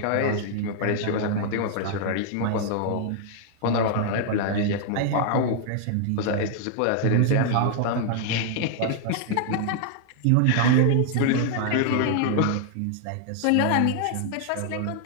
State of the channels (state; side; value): different; both; correlation 0.00